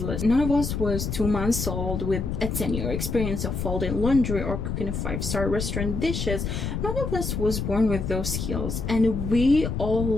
None of us was 2 months old with a 10-year experience of folding laundry or cooking a 5-star restaurant dishes. None of us was born with those skills, and we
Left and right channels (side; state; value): left; noise; rumble, 3 dB below the sound